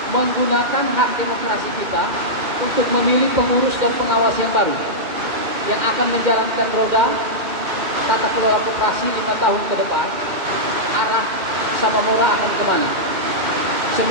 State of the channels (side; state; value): left; late; 2.6 ms